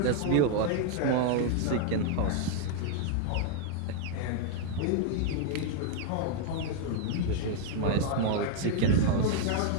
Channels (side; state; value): both; different; correlation 0.00